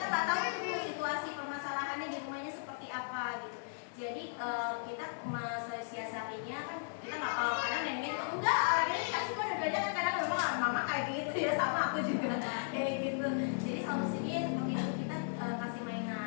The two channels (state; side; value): silent; right; digital silence